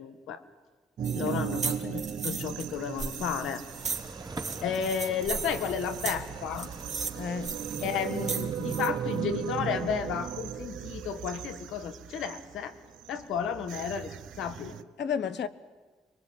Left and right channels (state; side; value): normal; both; correlation 0.43